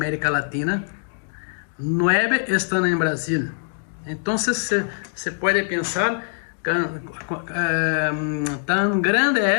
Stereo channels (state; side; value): silent; right; digital silence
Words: Latina, 9 están en Brasil. Entonces se puede pensar tan